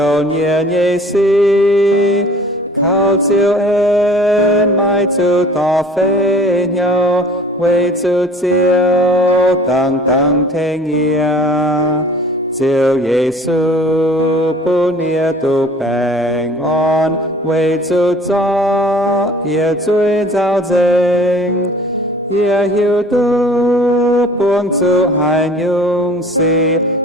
念耶稣，靠照恩埋主道飞鸟，为主照等等听呀。照耶穌本也都平安，為主作也最造證，也曉得幫助還勇士，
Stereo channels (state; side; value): normal; both; correlation 0.48